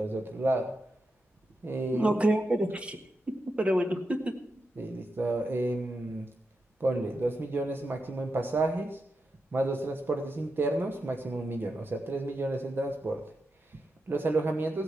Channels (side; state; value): both; normal; correlation 0.87